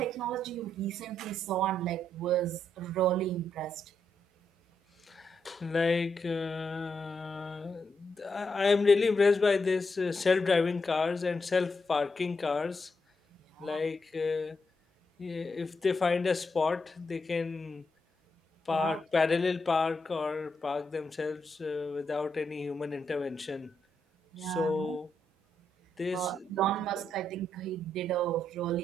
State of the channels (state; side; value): normal; both; correlation 0.81